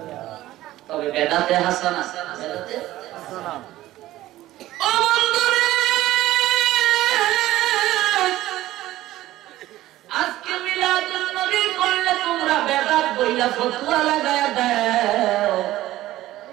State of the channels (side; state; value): left; quieter; 15.4 dB